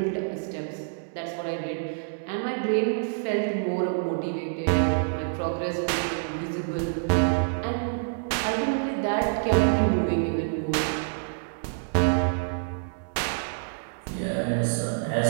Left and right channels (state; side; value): silent; left; digital silence